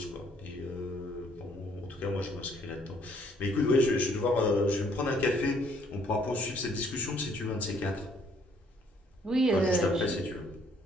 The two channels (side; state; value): both; normal; correlation 0.65